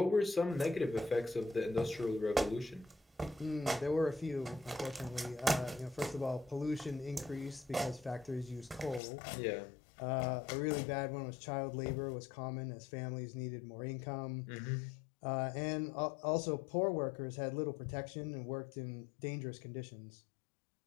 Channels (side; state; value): right; drops out; at 9.0 s